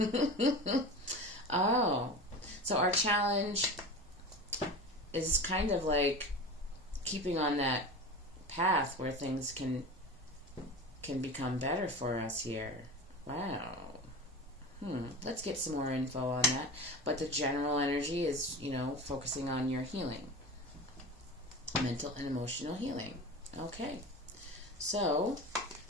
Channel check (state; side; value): normal; both; correlation 0.31